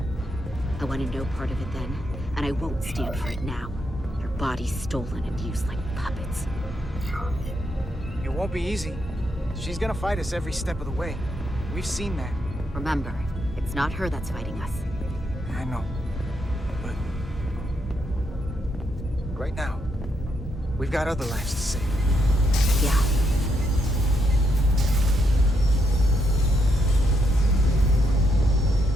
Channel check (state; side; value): normal; both; correlation 0.78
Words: I wanted no part of it then, and I won't stand for it now. Their bodies stolen and used like puppets. It won't be easy. She's gonna fight us every step of the way. We've seen that. Remember, it's not her that's fighting us. I know. But right now, we've got other lives to save. Yeah.